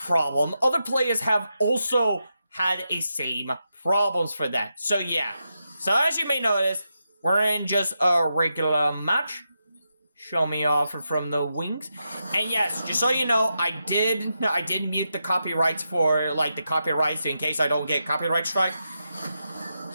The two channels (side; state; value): both; inverted; correlation -0.86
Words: Other players have also had a same problems for that. So yeah. So as you may notice, we're in just a regular match. Show me off from the wings. And yes, just so you know, I did mute the copyrights for the copyrights in case I don't get copyright strike.